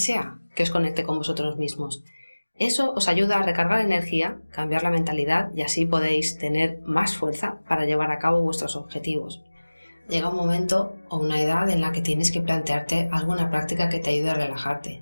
que os conecte con vosotros mismos. Eso os ayuda a recargar energía, cambiar la mentalidad y así podéis tener más fuerza para llevar a cabo vuestros objetivos. Llega un momento o una edad en la que tienes que plantearte alguna práctica que te ayude a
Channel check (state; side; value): inverted; both; correlation -1.00